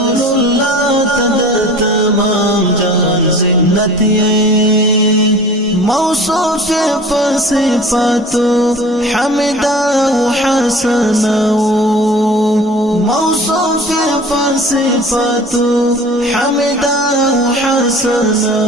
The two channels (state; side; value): normal; both; correlation 0.43